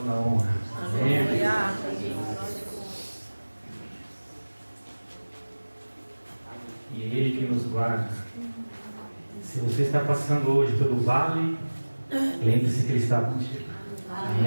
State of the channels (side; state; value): both; inverted; correlation -1.00